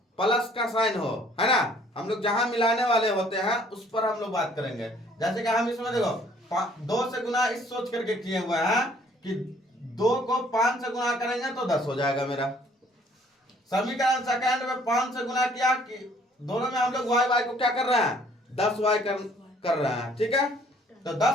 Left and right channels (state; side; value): normal; both; correlation 0.60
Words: प्लस का साइन हो, है ना। हम लोग जहां मिलाने वाले होते हैं उस पर हम लोग बात करेंगे। जैसे कि हम इसमें देखो 2 से गुना इस सोच करके किए हुए हैं कि 2 को 5 से गुना करेंगे तो 10 हो जाएगा मेरा। समीकरण सेकंड में 5 से गुना किया कि दोनों में हम लोग y को क्या कर रहे हैं, 10y कर रहे हैं, ठीक है। तो